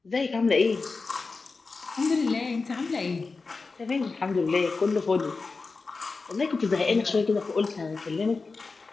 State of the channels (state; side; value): quieter; right; 4.1 dB